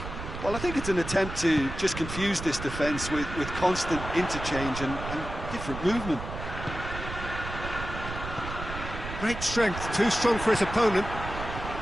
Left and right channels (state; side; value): noise; right; rumble, 8 dB below the sound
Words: Well, I think it's an attempt to just confuse this defence with constant interchange and different movement. Great strength, too strong for his opponent.